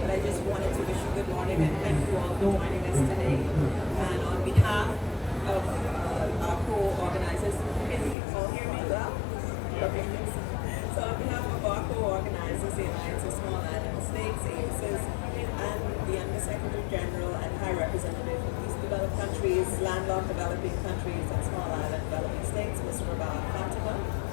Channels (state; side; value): drops out; right; at 8.2 s